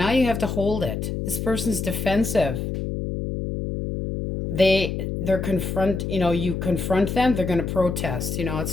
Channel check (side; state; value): left; noise; hum, 3 dB below the sound